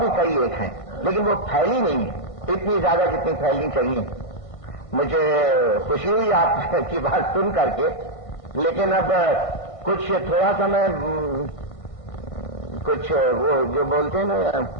कई एक हैं, लेकिन वो फैली नहीं है इतनी ज्यादा जितनी फैलनी चाहिए। मुझे खुशी हुई आपकी बात सुन करके, लेकिन अब कुछ थोड़ा सा मैं कुछ वो जो बोलते हैं ना,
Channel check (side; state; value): right; late; 1.5 ms